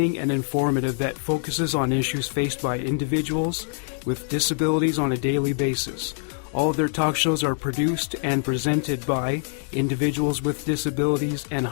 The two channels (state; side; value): silent; right; 62 dB below the other